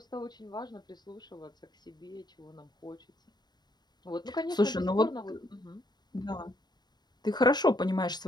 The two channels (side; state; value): right; late; 0.20 ms